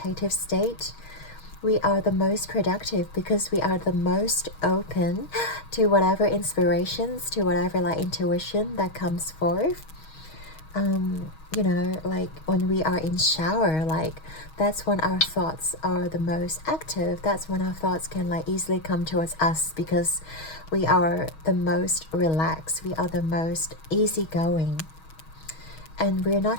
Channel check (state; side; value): late; right; 6.3 ms